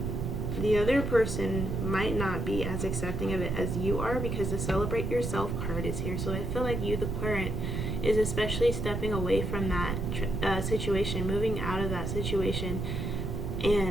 the other person might not be as accepting of it as you are, because the Celebrate Yourself card is here. So I feel like you, the Aquarian, is especially stepping away from that situation, moving out of that situation,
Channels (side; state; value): right; noise; rumble, 2 dB below the sound